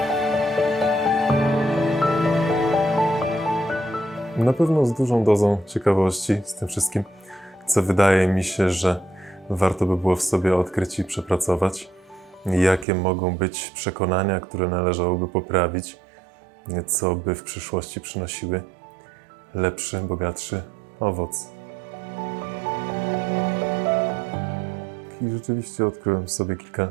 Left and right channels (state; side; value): drops out; left; at 12.9 s